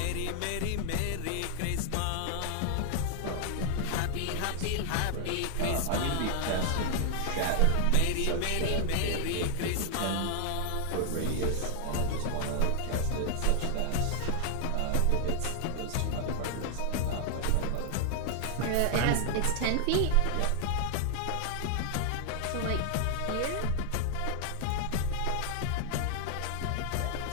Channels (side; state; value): both; different; correlation 0.00